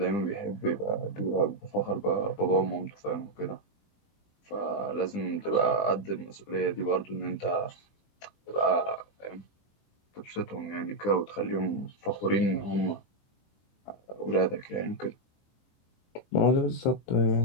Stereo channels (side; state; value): right; late; 20 ms